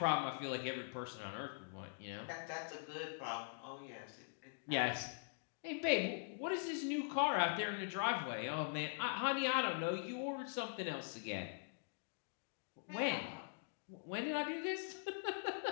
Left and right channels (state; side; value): silent; right; digital silence